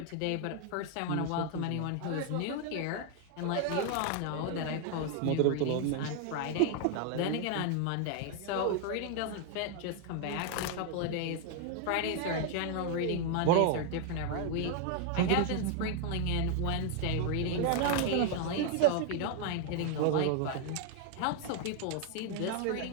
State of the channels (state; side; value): different; both; correlation 0.00